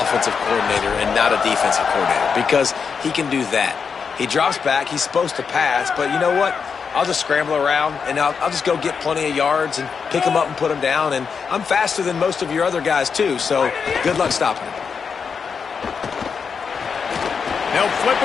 coordinator and not a defensive coordinator, because he can do that. He drops back. He's supposed to pass, but you know what? I'll just scramble around, and I'll just go get plenty of yards and pick them up and put them down, and I'm faster than most of your other guys, too, so good luck stopping him. They'll flip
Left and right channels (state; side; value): quieter; right; 6.0 dB